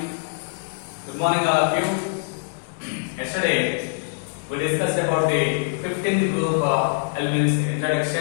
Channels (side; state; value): right; silent; digital silence